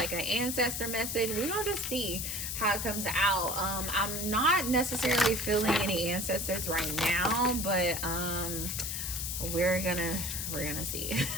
an ancestor message. We're going to just see how it comes out. I'm not necessarily feeling any ancestors right now, but we're gonna see.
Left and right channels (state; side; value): noise; left; hiss, 3 dB below the sound